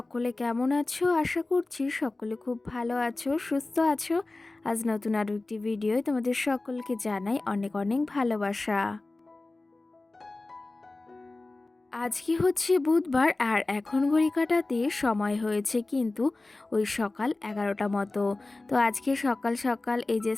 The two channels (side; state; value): right; quieter; 3.1 dB